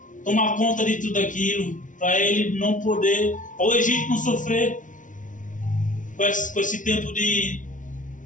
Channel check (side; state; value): right; late; 0.37 ms